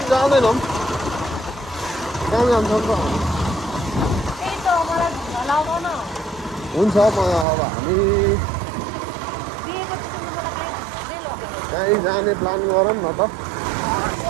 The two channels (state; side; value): drops out; left; at 7.5 s